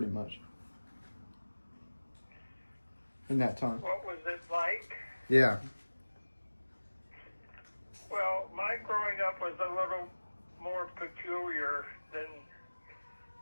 much, in that time? What was it like? Yeah. Well, my growing up was a little more peculiar than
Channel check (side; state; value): both; inverted; correlation -1.00